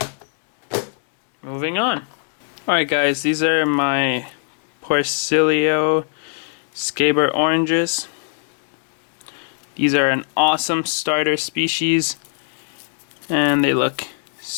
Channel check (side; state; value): right; silent; digital silence